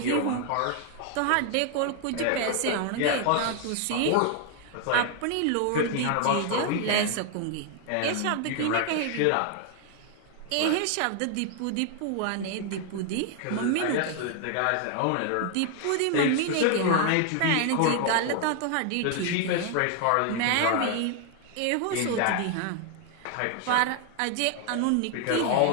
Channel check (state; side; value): different; both; correlation 0.00